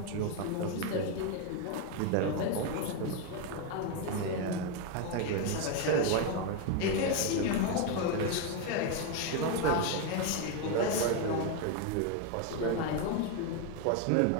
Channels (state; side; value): different; both; correlation 0.01